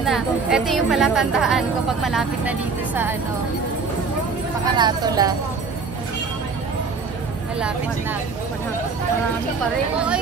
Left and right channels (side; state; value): left; quieter; 4.8 dB